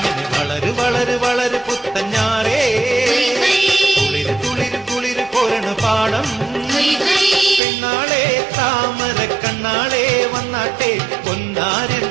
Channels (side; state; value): left; drops out; at 7.6 s